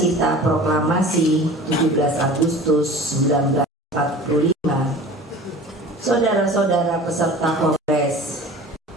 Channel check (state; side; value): normal; both; correlation 0.40